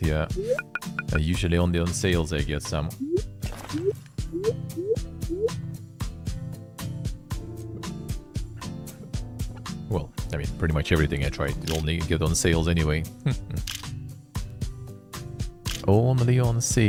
yeah, usually only on sales I get some. Well, I mean, pretty much everything I try to only get on sales anyway. Only on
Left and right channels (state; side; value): identical; both; correlation 1.00